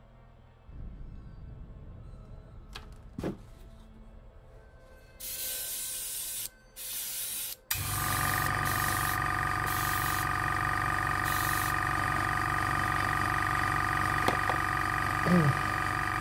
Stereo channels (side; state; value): both; identical; correlation 1.00